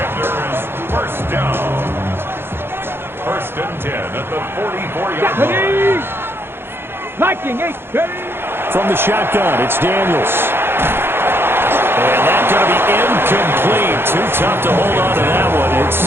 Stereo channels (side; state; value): left; late; 0.11 ms